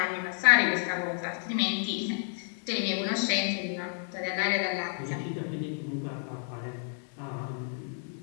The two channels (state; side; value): silent; right; 56 dB below the other